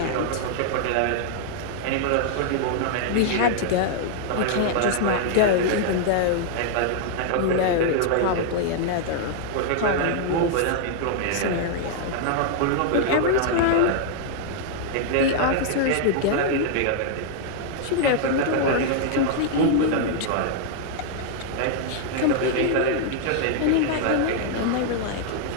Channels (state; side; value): different; both; correlation 0.00